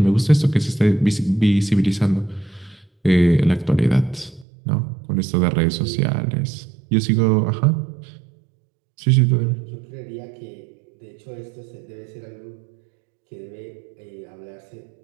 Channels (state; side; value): drops out; left; at 4.5 s